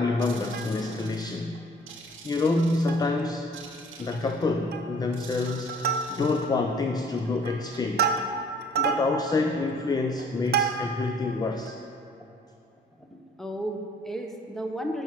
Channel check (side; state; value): both; normal; correlation 0.55